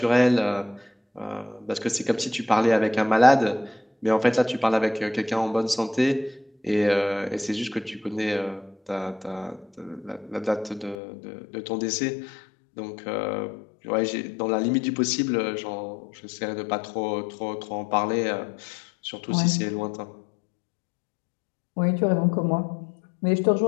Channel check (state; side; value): drops out; right; at 11.0 s